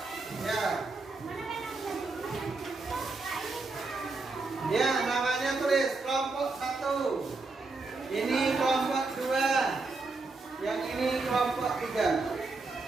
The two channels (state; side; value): quieter; left; 3.7 dB